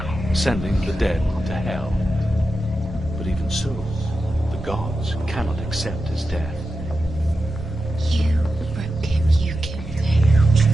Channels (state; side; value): normal; both; correlation 0.91